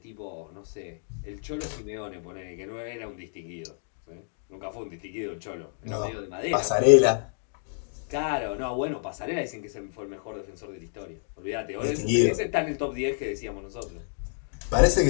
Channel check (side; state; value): right; silent; digital silence